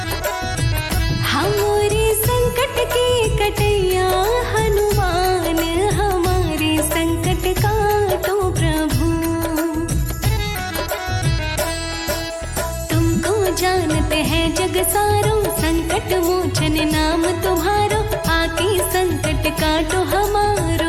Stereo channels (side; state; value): both; identical; correlation 1.00